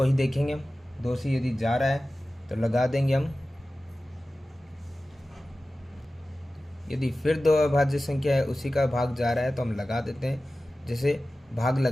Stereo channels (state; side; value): normal; both; correlation 0.95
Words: ही देखेंगे हम। 2 से यदि जा रहा है तो लगा देंगे हम। यदि फिर 2 अभाज्य संख्या है, उसी का भाग जा रहा है तो हम लगा देते हैं। जैसे भाग